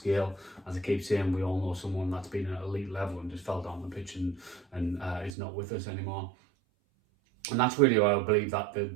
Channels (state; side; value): drops out; left; at 5.4 s